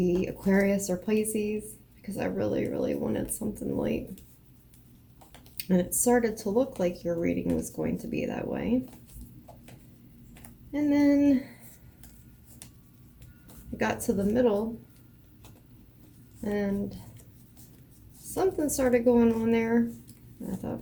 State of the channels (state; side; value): identical; both; correlation 1.00